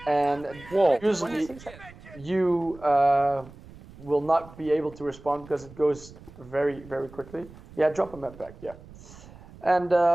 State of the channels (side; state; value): right; noise; rumble, 20 dB below the sound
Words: And usually you will not be able to respond because it goes very quickly. Yeah, drop a med pack. Yeah, and